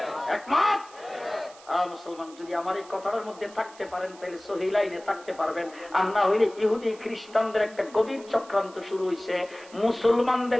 একমত? মুসলমান যদি আমার এই কথাটার মধ্যে থাকতে পারেন তাহলে সহি লাইনে থাকতে পারবেন, আর না হইলে ইহুদি খ্রিস্টানদের একটা গভীর চক্রান্ত শুরু হয়েছে,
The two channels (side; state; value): right; noise; hiss, 22 dB below the sound